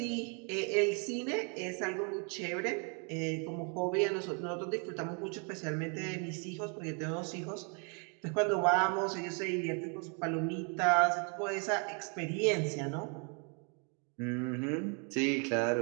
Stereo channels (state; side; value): quieter; left; 37.4 dB